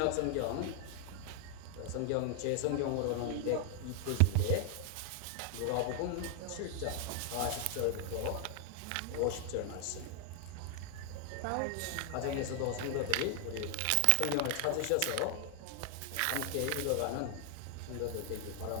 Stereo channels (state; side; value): different; both; correlation 0.00